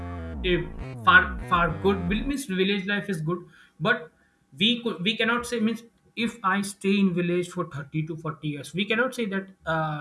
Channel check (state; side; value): identical; both; correlation 1.00